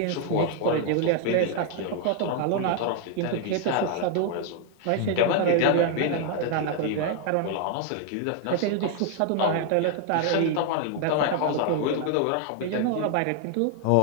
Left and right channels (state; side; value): different; both; correlation 0.00